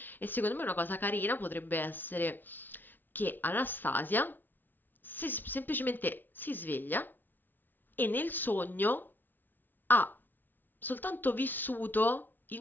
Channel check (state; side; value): late; right; 0.090 ms